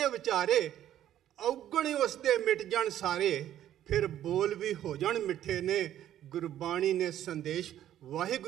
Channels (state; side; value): quieter; left; 11.7 dB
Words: ਵਿਚਾਰੇ, ਔਗਣ ਉਸ ਦੇ ਮਿਟ ਜਾਣ ਸਾਰੇ, ਫਿਰ ਬੋਲ ਵੀ ਹੋ ਜਾਣ ਮਿੱਠੇ ਨੇ। ਗੁਰਬਾਣੀ ਨੇ ਸੰਦੇਸ਼